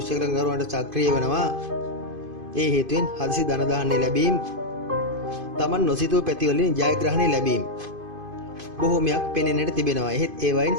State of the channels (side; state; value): left; late; 2.5 ms